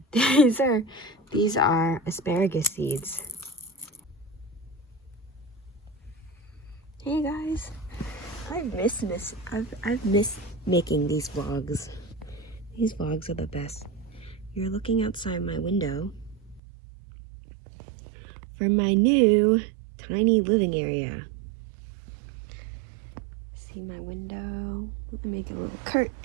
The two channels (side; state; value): left; drops out; at 16.6 s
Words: These are asparagus seeds. Hey guys, I've missed making these vlogs. These vlogs are the best. You're looking outside my window from my new tiny living area. See my window? Let me make a little